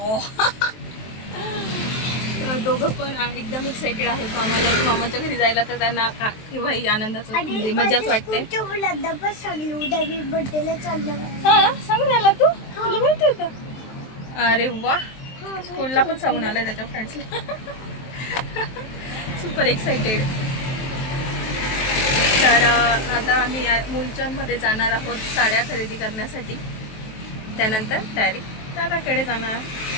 दोघं पण एकदम एक्साइटेड आहेत. मामाच्या घरी जायला. तर त्यांना केव्हाही आनंदाचं म्हणजे मजाच वाटते. हा, सांगून आला तू? तुला माहिती होतं? अरे वा, स्कूलला पण सांगून आलाय त्याच्या फ्रेंड्सला. Super excited. तर आता आम्ही मुलचंदमध्ये जाणार आहोत साड्या खरेदी करण्यासाठी. त्यानंतर डायरेक्ट दादाकडे जाणार.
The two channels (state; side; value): late; right; 23 ms